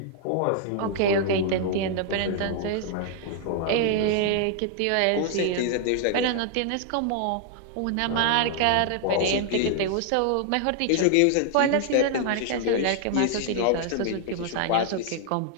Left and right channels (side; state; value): both; different; correlation -0.01